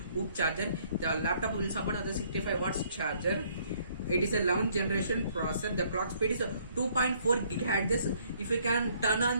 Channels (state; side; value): inverted; both; correlation -0.64